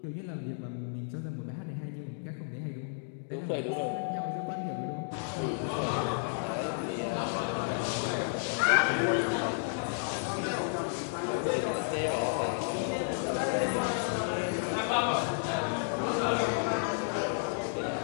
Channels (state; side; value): silent; right; digital silence